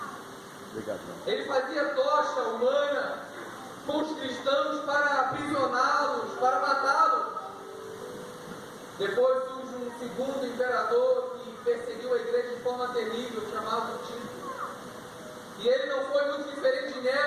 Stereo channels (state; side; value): identical; both; correlation 1.00